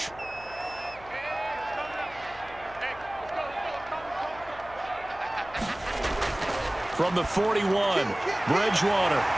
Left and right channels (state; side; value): noise; left; hum, 20 dB below the sound